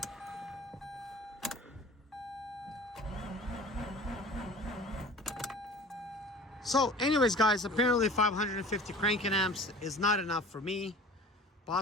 So anyways, guys, apparently 550 cranking amps is not enough for me.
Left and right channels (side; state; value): both; normal; correlation 0.43